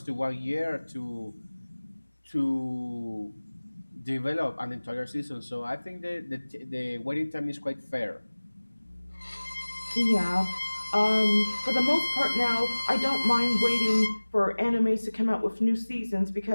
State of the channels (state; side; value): inverted; both; correlation -1.00